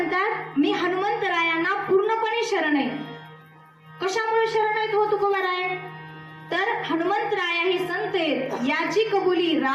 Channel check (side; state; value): both; identical; correlation 1.00